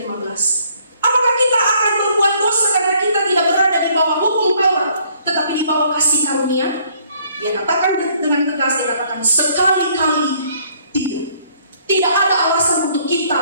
15. Apakah kita akan berbuat dosa karena kita tidak berada di bawah hukum Taurat, tetapi di bawah kasih karunia? Dia katakan dengan tegas, dia katakan sekali-kali tidak. Tidak ada alasan untuk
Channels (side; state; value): both; inverted; correlation -0.63